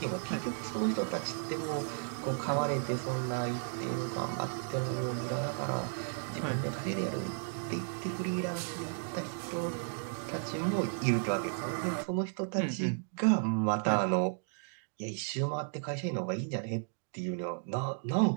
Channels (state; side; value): silent; left; 55 dB below the other